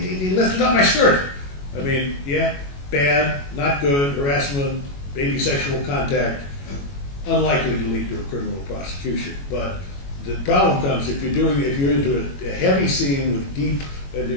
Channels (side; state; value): right; late; 21 ms